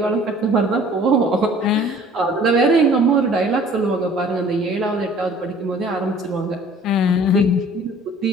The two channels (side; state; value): both; normal; correlation 0.51